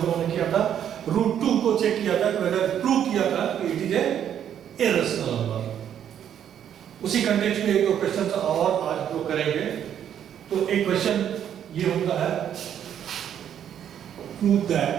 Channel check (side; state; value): left; quieter; 9.5 dB